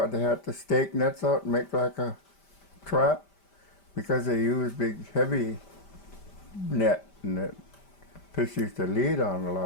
they had to stake nets out and make like a trap because they use big heavy net and the fish used to lead on a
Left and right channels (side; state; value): right; late; 5.1 ms